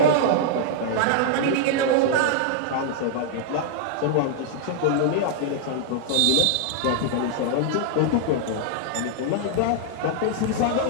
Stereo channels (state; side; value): different; both; correlation -0.01